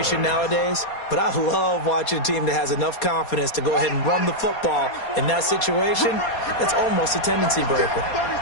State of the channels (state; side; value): late; right; 4.2 ms